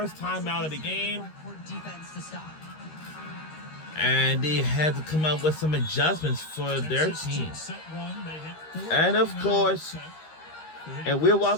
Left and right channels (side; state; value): right; late; 13 ms